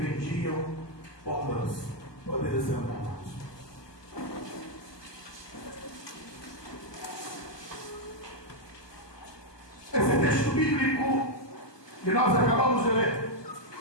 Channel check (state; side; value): late; right; 1.2 ms